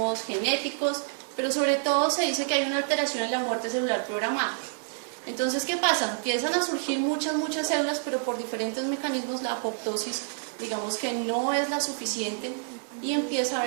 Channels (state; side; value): silent; left; 59 dB below the other